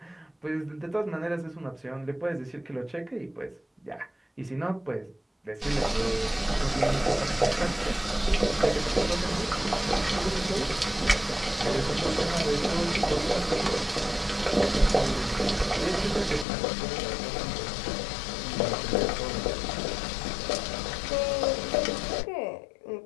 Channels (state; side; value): drops out; right; at 16.4 s